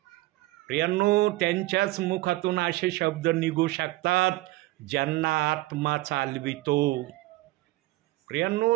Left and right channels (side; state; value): left; quieter; 19.0 dB